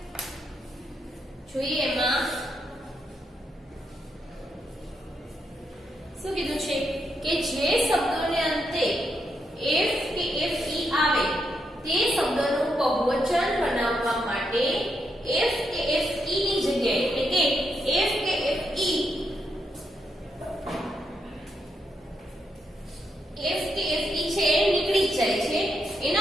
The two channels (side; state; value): both; normal; correlation 0.81